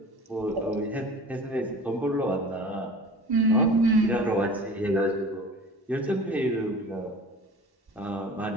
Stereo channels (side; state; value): both; normal; correlation 0.39